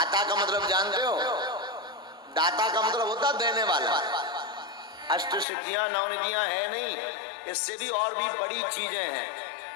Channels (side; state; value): right; drops out; at 5.5 s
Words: का मतलब जानते हो? दाता का मतलब होता देने वाला। अष्ट सिद्धियां 9 निधियां है नहीं, इससे भी और भी बड़ी चीजें हैं।